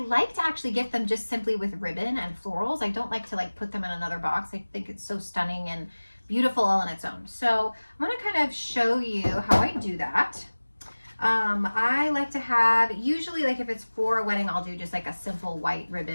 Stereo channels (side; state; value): both; inverted; correlation -1.00